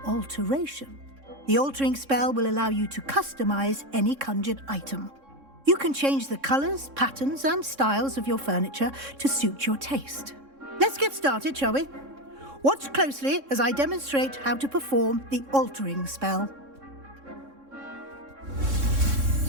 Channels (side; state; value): left; late; 3.6 ms